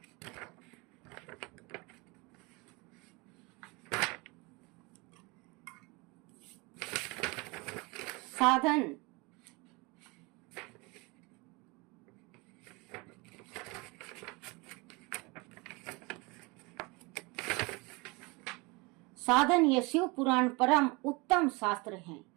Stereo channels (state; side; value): quieter; left; 26.6 dB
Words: साधन यह शिव पुराण परम उत्तम शास्त्र है।